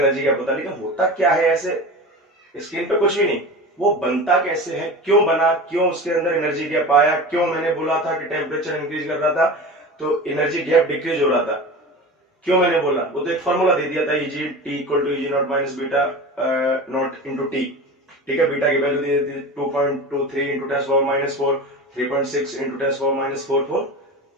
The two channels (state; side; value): normal; both; correlation 0.31